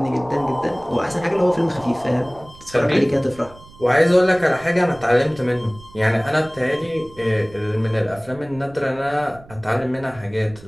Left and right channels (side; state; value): right; noise; rumble, 22 dB below the sound